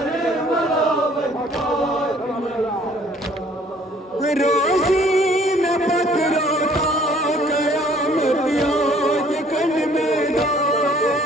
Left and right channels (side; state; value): both; normal; correlation 0.58